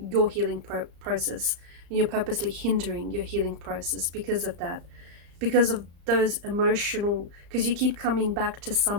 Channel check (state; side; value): late; left; 34 ms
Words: your healing process, and you're purposely hindering your healing process because of that, because of those emotional, because you keep coming back to